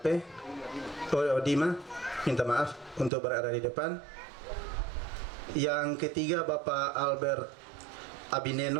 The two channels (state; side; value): drops out; left; at 3.1 s